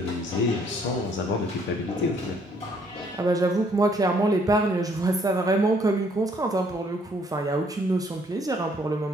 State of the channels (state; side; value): normal; both; correlation 0.65